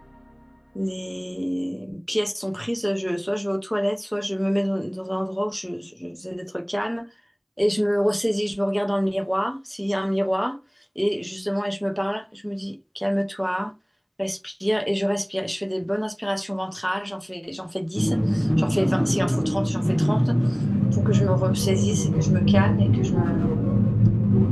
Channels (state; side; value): identical; both; correlation 1.00